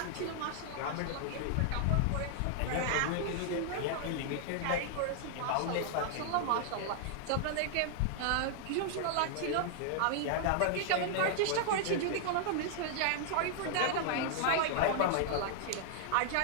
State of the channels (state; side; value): different; both; correlation -0.01